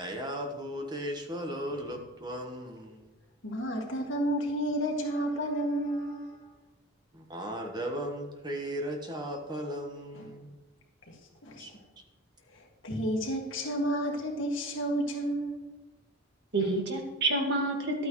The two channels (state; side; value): normal; both; correlation 0.34